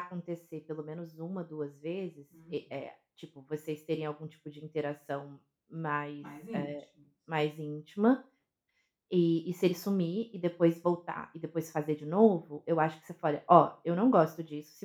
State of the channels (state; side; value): identical; both; correlation 1.00